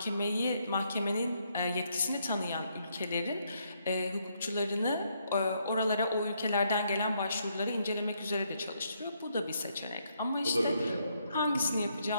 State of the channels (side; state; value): both; inverted; correlation -0.74